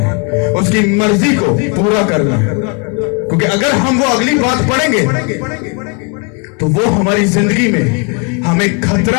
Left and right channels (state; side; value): quieter; right; 34.0 dB